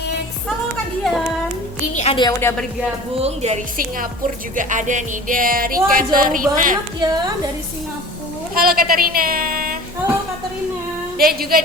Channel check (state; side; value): normal; both; correlation 0.41